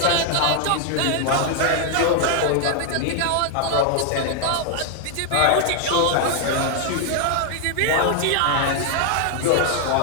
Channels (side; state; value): both; different; correlation 0.00